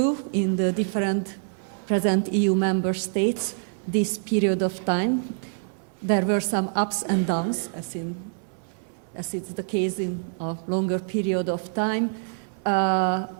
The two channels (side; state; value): left; silent; 59 dB below the other